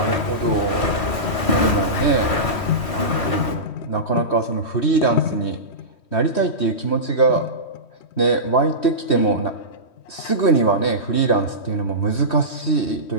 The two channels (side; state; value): right; late; 3.1 ms